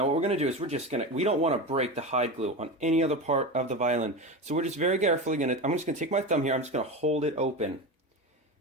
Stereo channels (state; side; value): normal; both; correlation 0.23